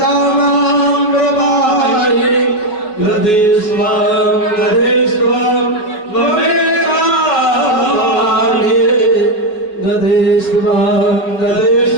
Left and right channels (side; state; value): right; late; 5.4 ms